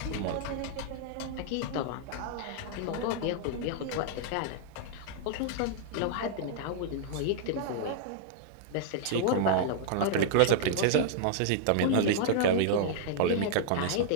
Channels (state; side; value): different; both; correlation -0.01